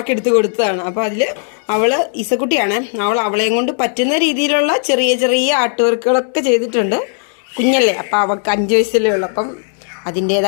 എടുത്ത് കൊടുത്തതാണ്. അപ്പോൾ അതിൽ അവള് ഇസക്കുട്ടിയാണ്. അവളെയും കൊണ്ട് പറ്റുന്ന രീതിയിലുള്ള ചെറിയ ചെറിയ ആർട്ട് വർക്കുകളൊക്കെ ചെയ്തിട്ടുണ്ട്. കുഞ്ഞല്ലേ, അപ്പം അവൾക്ക് 5 വയസ്സല്ലേ ഉള്ളൂ. അപ്പം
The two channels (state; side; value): silent; right; 63 dB below the other